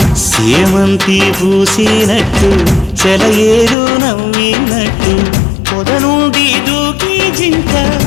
సేమంతి పూసినట్టు చెలయేరు నవ్వినట్టు పొద నుండి దూకి జింక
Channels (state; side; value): drops out; right; at 3.8 s